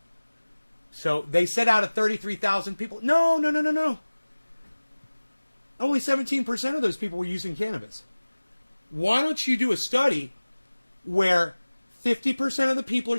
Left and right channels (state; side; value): inverted; both; correlation -1.00